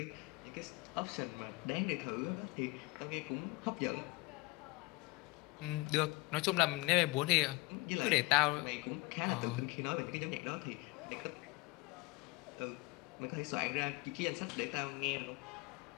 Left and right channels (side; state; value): right; quieter; 23.2 dB